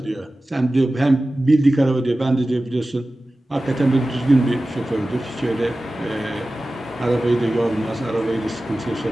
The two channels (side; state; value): both; normal; correlation 0.96